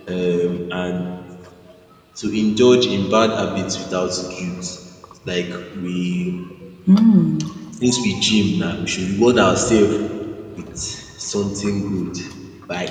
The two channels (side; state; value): both; identical; correlation 1.00